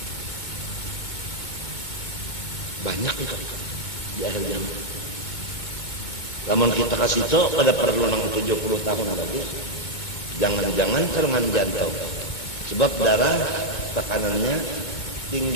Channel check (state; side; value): late; right; 2.2 ms